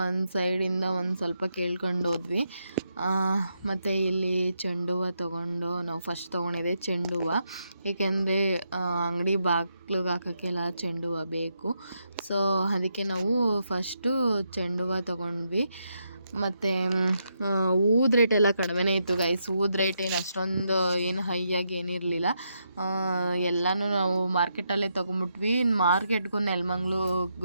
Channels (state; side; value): inverted; both; correlation -0.81